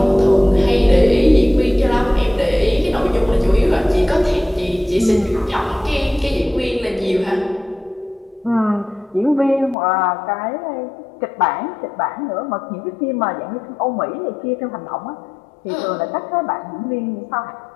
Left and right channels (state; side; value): drops out; right; at 9.8 s